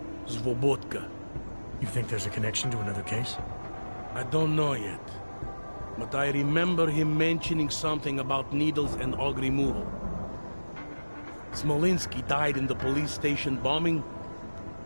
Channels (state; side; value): inverted; both; correlation -1.00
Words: Svobotka. You think there's a connection to another case? I don't know yet. But I remember him mentioning something about needles and AUG removal. Smolinski died in the police station bombing.